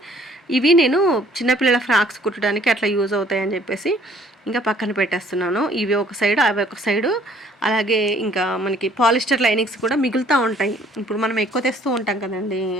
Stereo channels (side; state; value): both; normal; correlation 0.59